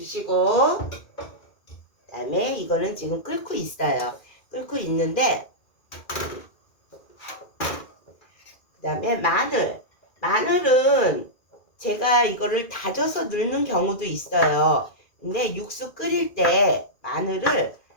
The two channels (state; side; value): late; right; 2.4 ms